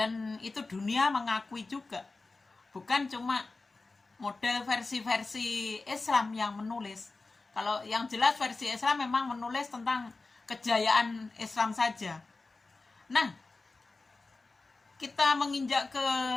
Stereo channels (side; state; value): right; quieter; 3.6 dB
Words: itu dunia mengakui juga. Bukan cuma model versi-versi Islam yang menulis. Kalau yang jelas versi Islam memang menulis tentang kejayaan Islam saja. Nah, kita menginjak ke